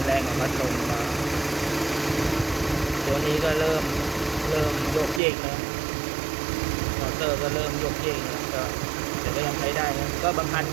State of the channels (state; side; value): drops out; left; at 5.2 s